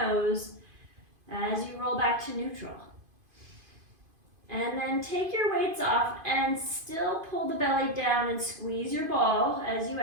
as you roll back to neutral. And then take your weights off and still pull the belly down and squeeze your ball as you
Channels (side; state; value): left; late; 2.5 ms